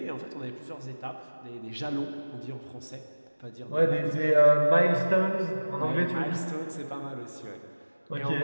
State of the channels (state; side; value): inverted; both; correlation -1.00